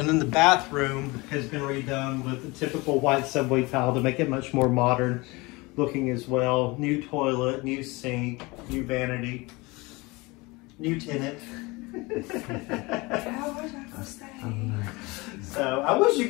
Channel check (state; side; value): quieter; right; 24.2 dB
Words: then the bathroom has been redone with the typical white subway tile to make it much more modern looking as well. New toilet, new sink, new vanity, new tenant. I wish I could stay. So I wish you